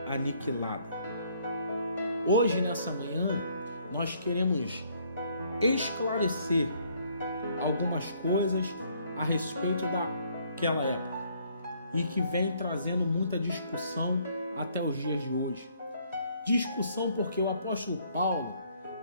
aniquilada. Hoje, nessa manhã, nós queremos esclarecer algumas coisas a respeito daquela época e que vem trazendo muita discussão até os dias de hoje. Discussão porque o apóstolo Paulo,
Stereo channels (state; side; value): inverted; both; correlation -0.65